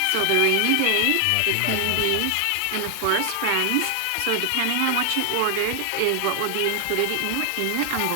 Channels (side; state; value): both; different; correlation 0.00